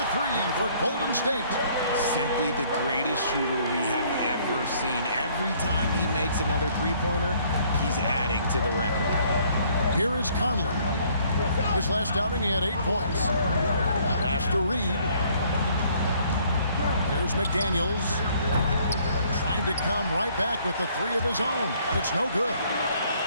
3 for Golden State. Simply the greatest shooter we have ever seen. Every time he makes another three-pointer, he's adding to the record. Here is Conley. His last outing, he had 8 points. Pass to Reed. Here's McDaniels. Trying to come right back with the 3 of his own, but it's no good.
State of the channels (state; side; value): inverted; both; correlation -0.62